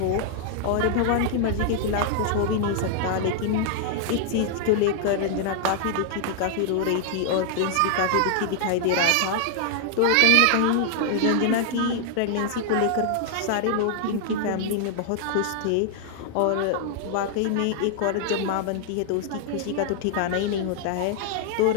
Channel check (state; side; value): different; both; correlation -0.01